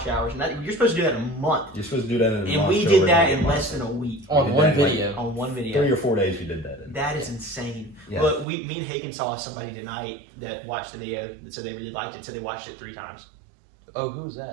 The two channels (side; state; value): left; drops out; at 8.5 s